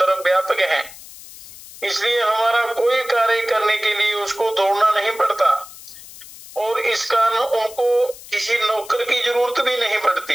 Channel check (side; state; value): left; noise; hiss, 17 dB below the sound